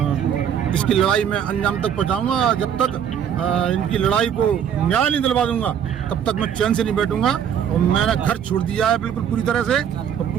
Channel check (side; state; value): left; quieter; 8.7 dB